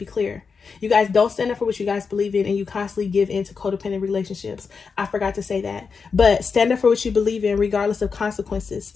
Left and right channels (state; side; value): quieter; right; 5.3 dB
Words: clear. You guys don't stand up for what you guys believe in, and you constantly give in to codependent relationships. I forgot to say that. But stand up for what you believe in, regardless of consequences.